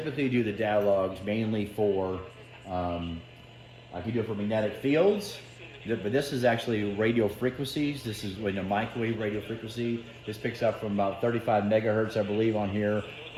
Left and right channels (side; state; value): both; identical; correlation 1.00